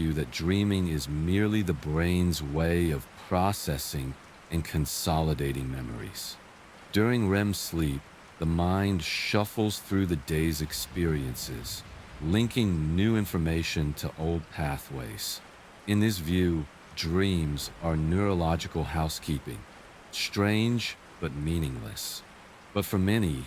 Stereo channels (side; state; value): both; identical; correlation 1.00